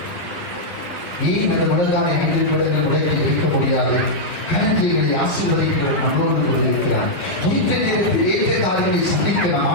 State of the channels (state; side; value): late; right; 11 ms